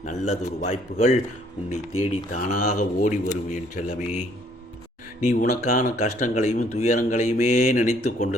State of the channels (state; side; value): normal; both; correlation 0.64